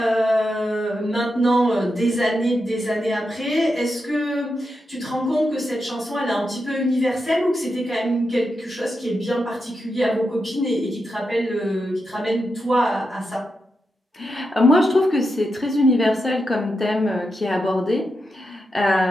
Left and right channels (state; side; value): normal; both; correlation 0.87